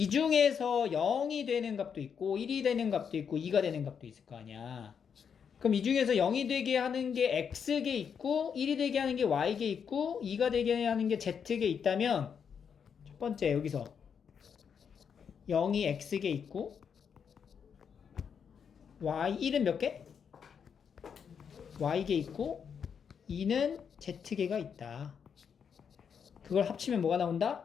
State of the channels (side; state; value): right; quieter; 7.1 dB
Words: 중에서 0이 되는 값도 있고 1이 되는 값도 있고 2가 되는 값도 있을 거 아니야. 그럼 이 중에서 0이 되게 하는 게 X개 있고 1이 되게 하는 게 Y개 있고 2가 되게 하는 게 Z개 있다면 첫 번째 여기서 0이 X개 있고 Y1은 몇 개? Y개 있고 2는 Z개가 있다. 그걸 합치면 뭐가